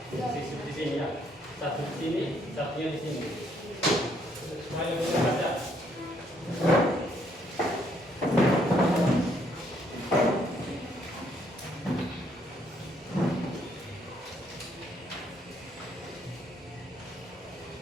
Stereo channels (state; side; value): normal; both; correlation 0.69